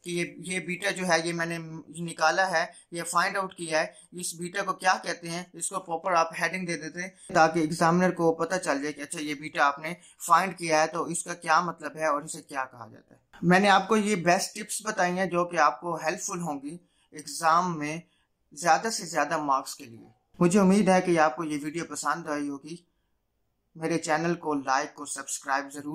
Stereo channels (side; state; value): both; identical; correlation 1.00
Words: कि ये बीटा जो है ये मैंने निकाला है, ये फाइंड आउट किया है, इस बीटा को क्या कहते हैं, इसको प्रॉपर आप हेडिंग दे देते हैं ताकि एग्जामिनर को पता चल जाए कि अच्छा ये बीटा आपने फाइंड किया है तो इसका क्या मतलब है और इसे क्या कहा जाता है। मैंने आपको ये बेस्ट टिप्स बताई हैं जो कि आपको हेल्पफुल होंगी एग्जाम में ज्यादा से ज्यादा मार्क्स के लिए। मुझे उम्मीद है कि आपको ये वीडियो पसंद आई होगी। मेरे चैनल को लाइक और सब्सक्राइब